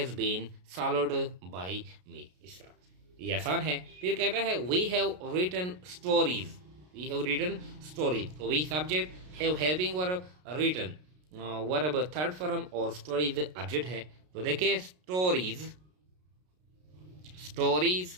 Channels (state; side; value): late; left; 33 ms